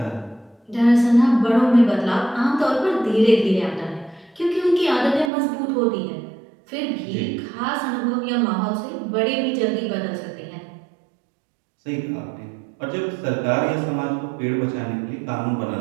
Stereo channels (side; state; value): left; drops out; at 5.3 s